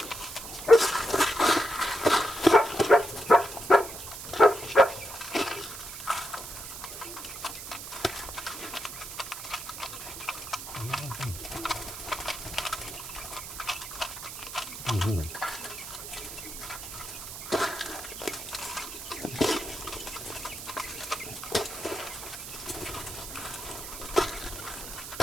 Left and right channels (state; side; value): noise; right; hiss, 10 dB below the sound